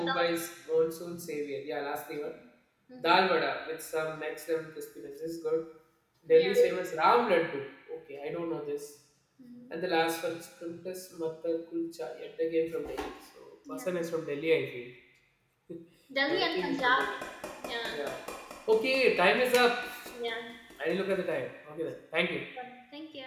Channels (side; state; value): both; identical; correlation 1.00